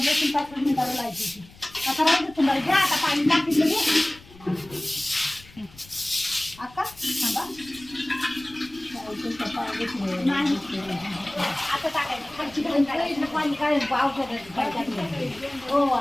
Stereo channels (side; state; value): left; noise; rumble, 23 dB below the sound